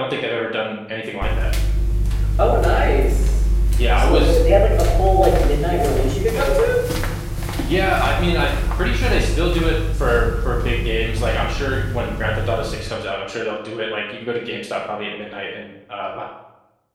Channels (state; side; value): identical; both; correlation 1.00